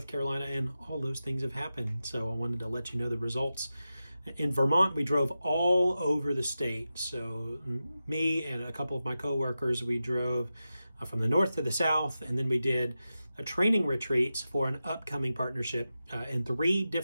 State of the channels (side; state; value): both; inverted; correlation -0.92